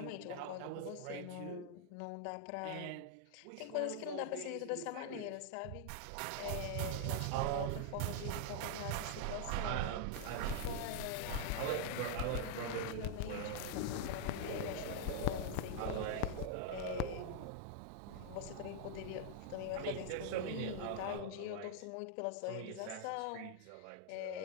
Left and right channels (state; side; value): different; both; correlation -0.01